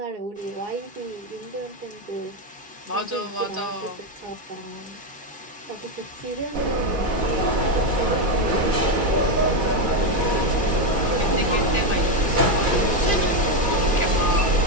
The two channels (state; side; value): late; left; 2.4 ms